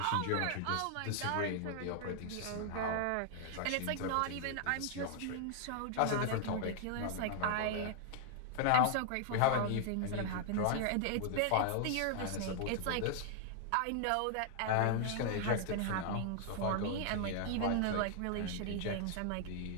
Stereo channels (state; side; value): different; both; correlation 0.00